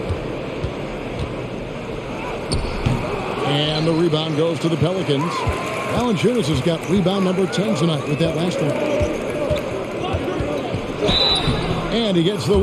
And the rebound goes to the Pelicans. Valanciunas has got rebound number 10 tonight with that last one. And he gets the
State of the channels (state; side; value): identical; both; correlation 1.00